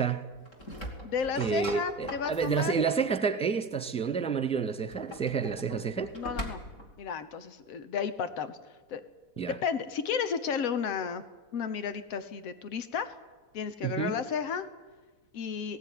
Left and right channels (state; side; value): late; right; 4.1 ms